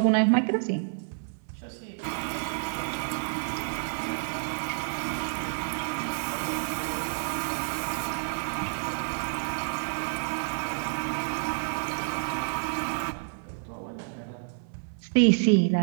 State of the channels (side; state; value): left; silent; 57 dB below the other